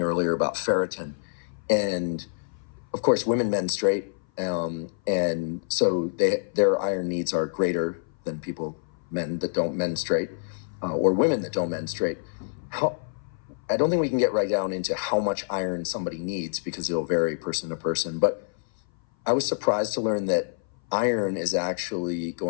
earlier about ferritin, and of course, women menstruate, and so their iron needs are greater than men that don't menstruate, or women that don't menstruate. How I don't think we can get right down into how much iron somebody needs because it'll vary person to person. But I was surprised to learn that iron is actually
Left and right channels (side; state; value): right; silent; 57 dB below the other